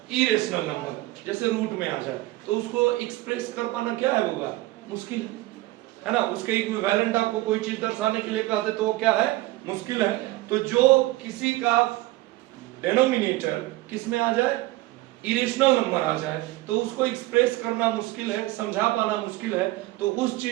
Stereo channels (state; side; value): quieter; left; 18.7 dB